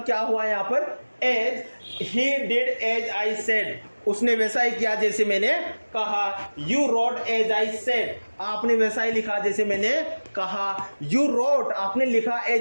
क्या हुआ यहां पर, as. He did as I said, उसने वैसा ही किया जैसे मैंने कहा। You wrote as I said, आपने वैसा ही लिखा जैसे मैंने कहा। यू रोट, आपने लिखा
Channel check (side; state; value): both; inverted; correlation -1.00